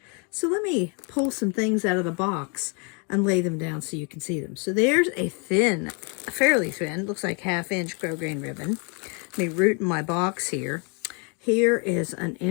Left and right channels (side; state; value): right; quieter; 35.4 dB